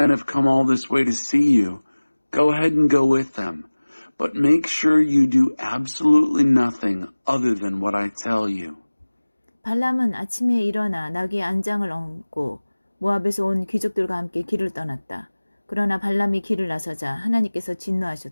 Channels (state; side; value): inverted; both; correlation -1.00